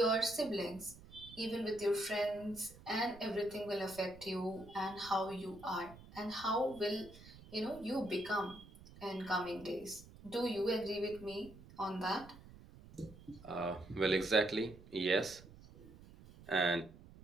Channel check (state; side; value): noise; right; rumble, 19 dB below the sound